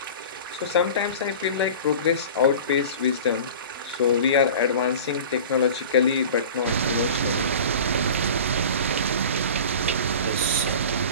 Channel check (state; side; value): inverted; both; correlation -0.37